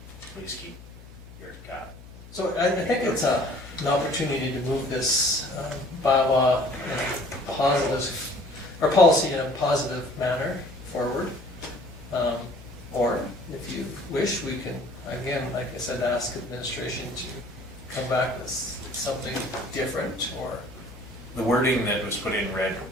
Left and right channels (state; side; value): noise; left; hum, 18 dB below the sound